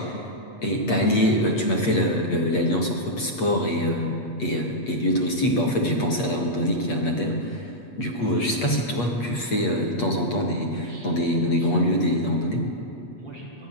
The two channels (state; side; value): late; right; 8.4 ms